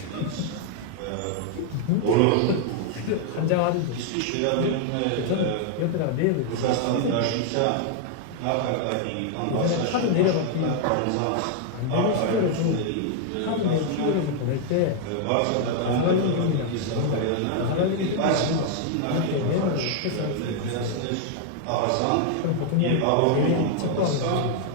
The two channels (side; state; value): both; different; correlation 0.00